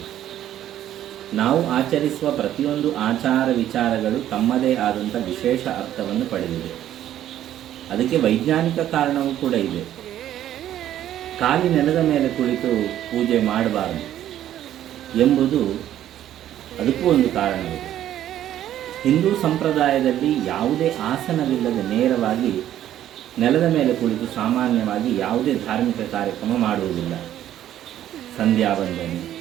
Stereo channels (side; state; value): left; quieter; 11.8 dB